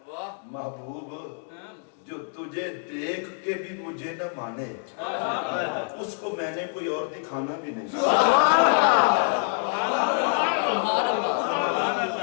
محبوب جو تجھے دیکھ کے بھی مجھے نہ مانے اس کو میں نے کوئی اور دکھانا بھی نہیں.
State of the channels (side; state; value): right; silent; 61 dB below the other